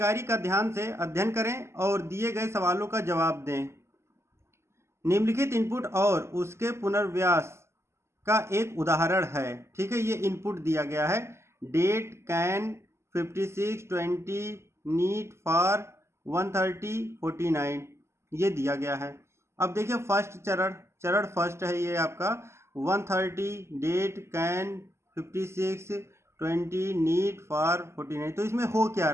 का ध्यान से अध्ययन करें और दिए गए सवालों का जवाब दें। निम्नलिखित इनपुट और उसके पुनर्व्यास का एक उदाहरण है। ठीक है, ये इनपुट दिया गया है, डेट कैन 56 20 नीट फॉर 130 49, ये दिया गया है। अब देखिए फर्स्ट चरण फर्स्ट है ये आपका 130 डेट कैन 56 20 नीट फॉर 49। तो इसमें हो क्या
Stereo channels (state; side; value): late; left; 0.13 ms